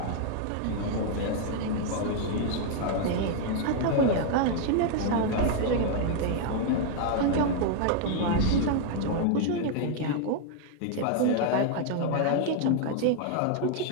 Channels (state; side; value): different; both; correlation 0.00